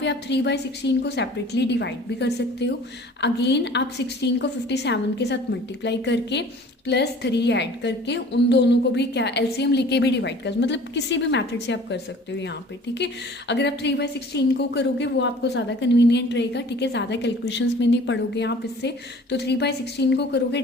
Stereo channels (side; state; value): both; normal; correlation 0.48